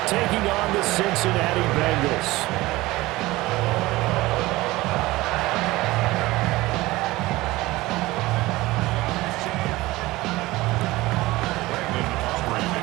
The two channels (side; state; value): left; quieter; 19.3 dB